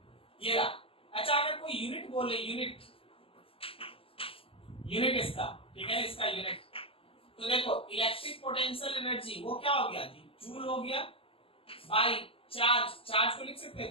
ये रहा। अच्छा अगर कोई यूनिट बोले, यूनिट इसका, ठीक है इसका यूनिट, तो देखो इलेक्ट्रिक पोटेंशियल एनर्जी वो क्या हो गया जी, जूल हो गया बाय चार्ज, चार्ज को लिख सकते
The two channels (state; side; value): late; right; 0.26 ms